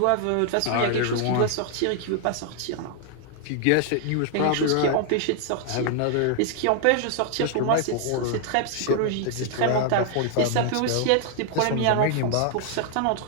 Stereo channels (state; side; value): different; both; correlation 0.00